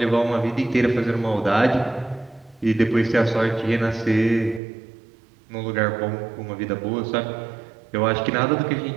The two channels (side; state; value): left; drops out; at 4.6 s